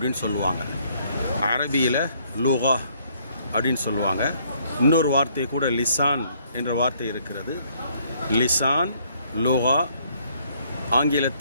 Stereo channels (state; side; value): inverted; both; correlation -0.66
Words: சொல்லுவாங்க. அரபியில் லுகா அப்படின்னு சொல்லுவாங்க. இன்னொரு வார்த்தை கூட லிசான் என்ற வார்த்தை இருக்கிறது. லிசான், லுகா,